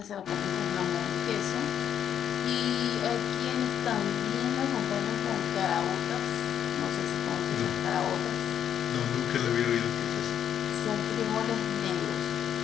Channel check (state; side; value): quieter; right; 9.3 dB